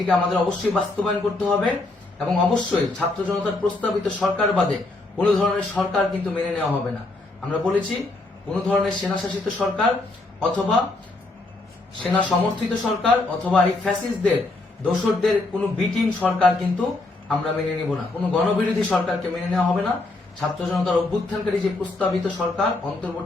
আমাদের অবশ্যই বাস্তবায়ন করতে হবে এবং অবশ্যই ছাত্র জনতার প্রস্তাবিত সরকার বাদে কোনো ধরনের সরকার কিন্তু মেনে নেওয়া হবে না। আমরা বলেছি কোনো ধরনের সেনা শাসিত সরকার অথবা সেনা সমর্থিত সরকার অথবা এই ফ্যাসিস্টদের দোসরদের কোনো বিটিম সরকার কিন্তু আমরা মেনে নিব না। কোনো গণবিরোধী সরকারকে মেনে নেওয়া হবে না। ছাত্র জনতার অভ্যুত্থানকারী যে প্রস্তাবিত সরকার,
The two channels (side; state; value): right; quieter; 3.0 dB